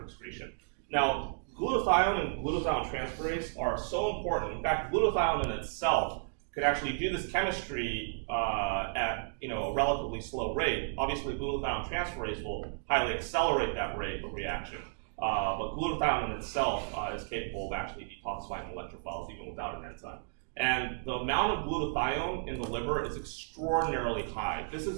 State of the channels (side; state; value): left; silent; digital silence